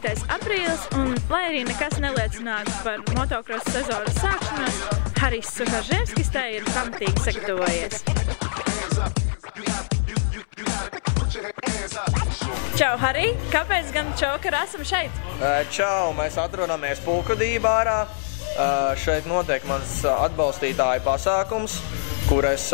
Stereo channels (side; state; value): right; silent; 63 dB below the other